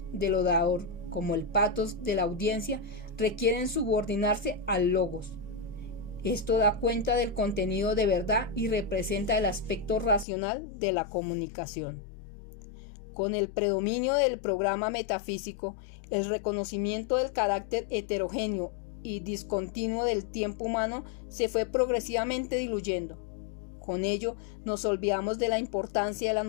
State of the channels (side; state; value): right; drops out; at 10.2 s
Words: del orador como el pathos de la audiencia requieren subordinarse al logos. Esto da cuenta del contenido de verdad y representa el aspecto racional de la comunicación. Con el predominio del programa metafísico, el reconocimiento del carácter heterogéneo y discontinuo del tiempo humano se fue progresivamente diluyendo. Con ello, nos olvidamos de la importancia de la